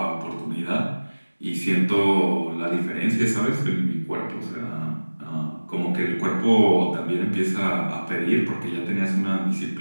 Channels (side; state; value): both; inverted; correlation -1.00